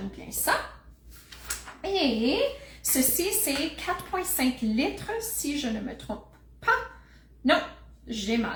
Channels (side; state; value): both; identical; correlation 1.00